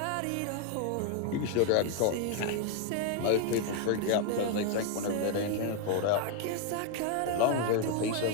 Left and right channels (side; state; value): both; different; correlation 0.01